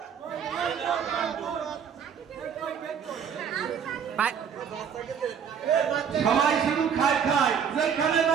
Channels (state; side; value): quieter; left; 7.5 dB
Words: সবাই শুধু খায় খায়, যেখানে